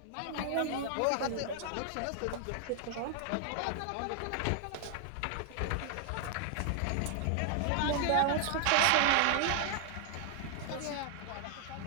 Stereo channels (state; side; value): different; both; correlation 0.00